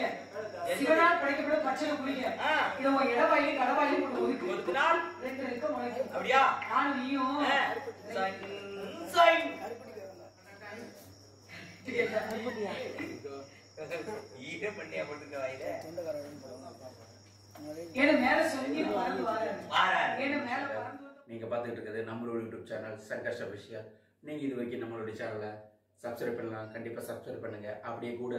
சிவனால் படைக்கப்பட்ட பச்சை புளிங்க. இது உங்க இடவாயி கடவாயி போட்டு ஒதுக்குனால் ரெண்டு ரெக்க முளைக்கும். அப்படியா? நானும் நீயும் ஈர பண்ணியா போட்டுக்க வாயில. ஏன்னா மேல சொல்லி பறந்து வாரேன். ஏன்னா மேல பறந்து. நீங்க பார்த்துட்டு இருக்கிறது நம்மளோட யூடியூப் சேனல் சங்கர்ஷ் அபிஷியல். நீங்க இது வரைக்கும் நம்மளோட சேனலை சப்ஸ்கிரைப் பண்ணலாம். கண்டிப்பா சப்ஸ்கிரைப் பண்ணுங்க. அப்படியே கூட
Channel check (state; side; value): identical; both; correlation 1.00